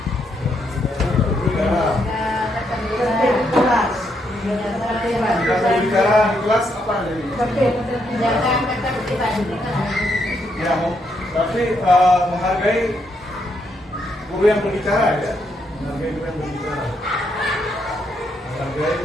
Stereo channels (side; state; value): both; normal; correlation 0.77